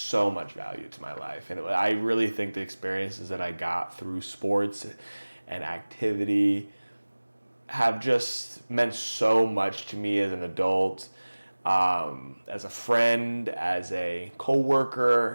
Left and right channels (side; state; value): both; inverted; correlation -1.00